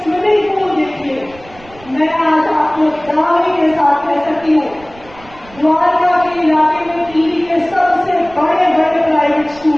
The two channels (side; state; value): right; noise; rumble, 23 dB below the sound